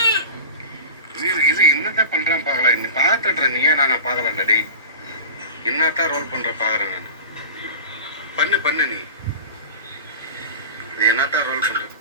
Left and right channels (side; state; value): both; inverted; correlation -0.34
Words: இது என்னதான் பண்ணுறேன் பார்க்கலாம். நீ பார்த்துட்றேன். நீயே நான் பார்க்கலாம்டா டே. என்னத்தான் ரோல் பண்ணுற பார்க்குறேன் நான். பண்ணு நீ என்னத்தான் ரோல் பண்ணுற.